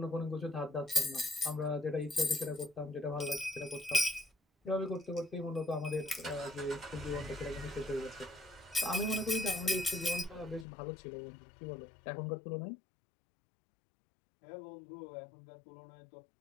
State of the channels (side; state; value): right; drops out; at 10.7 s